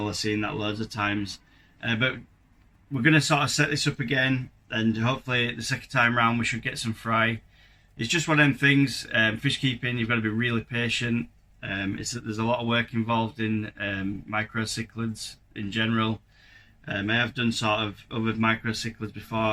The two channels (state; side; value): identical; both; correlation 1.00